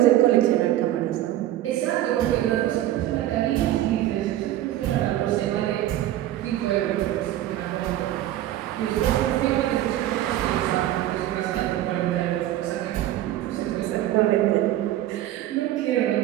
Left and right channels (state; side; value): quieter; left; 13.7 dB